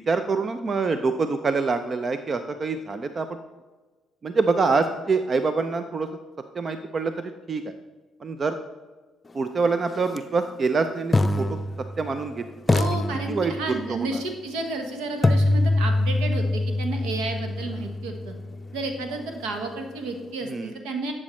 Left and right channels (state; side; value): normal; both; correlation 0.83